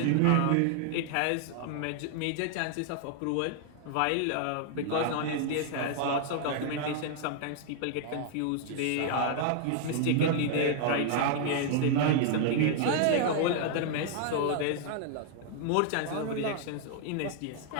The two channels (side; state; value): both; different; correlation 0.00